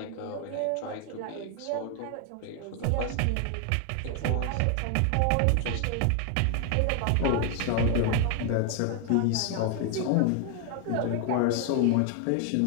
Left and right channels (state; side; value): different; both; correlation 0.00